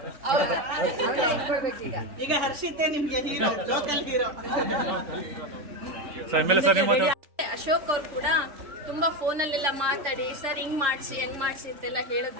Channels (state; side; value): late; left; 3.4 ms